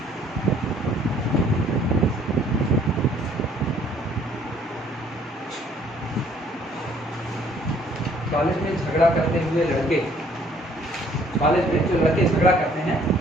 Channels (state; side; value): normal; both; correlation 0.60